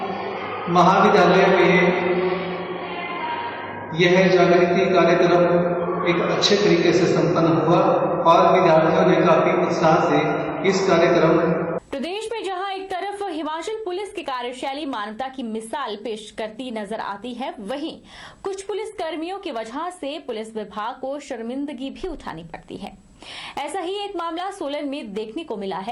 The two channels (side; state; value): both; identical; correlation 1.00